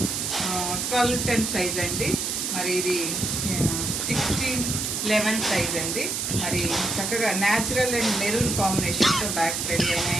12-10 సైజ్ అండి. మరి ఇది 16-11 సైజ్ అండి. మరి చక్కగా న్యాచురల్ అండ్ మెరూన్ కాంబినేషన్తో బ్యాగ్స్ రెడీ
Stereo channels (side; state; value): right; noise; hiss, 1 dB below the sound